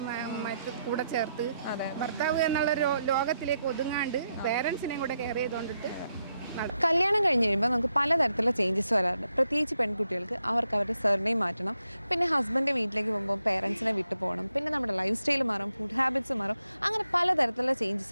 കൂടെ ചേർത്ത് ഭർത്താവ് എന്നുള്ള ലോകത്തിലേക്ക് ഒതുങ്ങാണ്ട് പേരൻസിനെയും കൂടെ കെയർ ചെയ്തുകൊണ്ടിട്ട് കല്യാണം കഴിഞ്ഞ് കഴിയുമ്പോൾ നമുക്ക് പലതരത്തിലുള്ള ചേഞ്ചസ് വരാറുണ്ട്. പ്രത്യേകിച്ച് പെൺകുട്ടികൾക്ക് അവർക്ക് അവരുടെ സർനെയിം മാറ്റണം. പിന്നെ ഹസ്ബൻഡ് വീട്ടിലേക്ക് പോകുമ്പോൾ പേരൻസിനെ വിട്ടു പോകണം. പിന്നെ നമ്മുടെ ലൈഫ് സ്റ്റൈൽ മാറും, ഫുഡ് ഹാബിറ്റ്സ് മാറും. അങ്ങനെ പലതരത്തിലുള്ള ചേഞ്ചസ്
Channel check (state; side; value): inverted; both; correlation -0.82